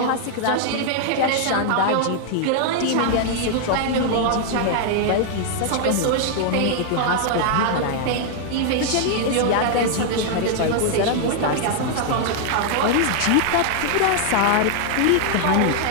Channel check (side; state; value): both; different; correlation 0.00